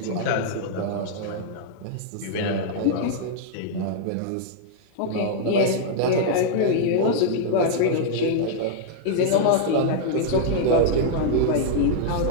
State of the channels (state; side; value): different; both; correlation -0.01